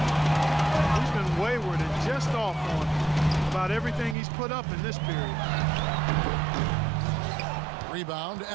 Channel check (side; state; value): left; drops out; at 4.2 s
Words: He's been wayward and just off on about everything he's put up in this period. Rebound,